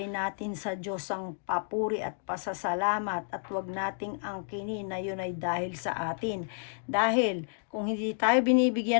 natin sa Diyos ang papuri at pasasalamat, at wag nating angkinin na yun ay dahil sa atin. Dahil kung hindi tayo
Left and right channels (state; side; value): silent; right; digital silence